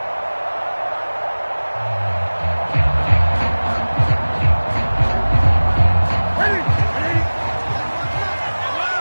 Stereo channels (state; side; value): inverted; both; correlation -1.00